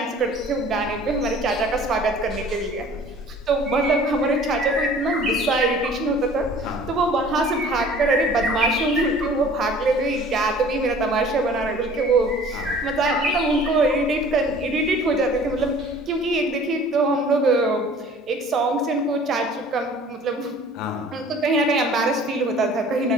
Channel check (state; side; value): normal; both; correlation 0.49